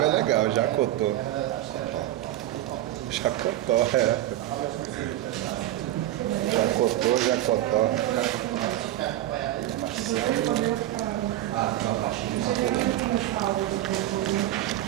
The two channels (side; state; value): left; quieter; 14.0 dB